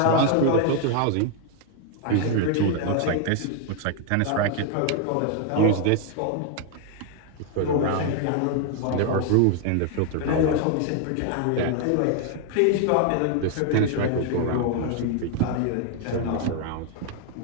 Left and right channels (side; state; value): both; different; correlation 0.00